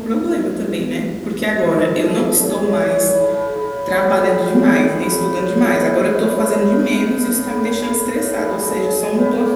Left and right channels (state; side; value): identical; both; correlation 1.00